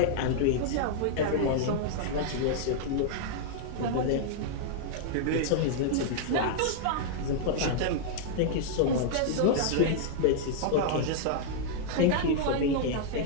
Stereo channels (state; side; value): different; both; correlation -0.01